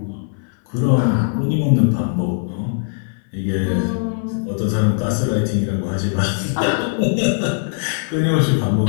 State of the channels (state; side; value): silent; right; 59 dB below the other